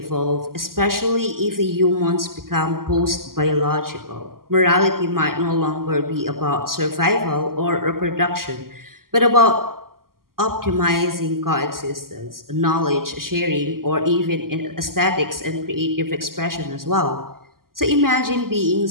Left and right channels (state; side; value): late; left; 0.92 ms